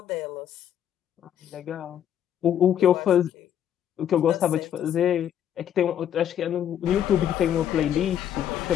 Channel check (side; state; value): right; quieter; 10.0 dB